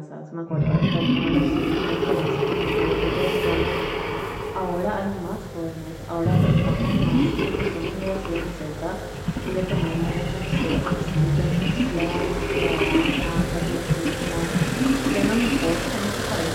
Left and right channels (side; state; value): both; identical; correlation 1.00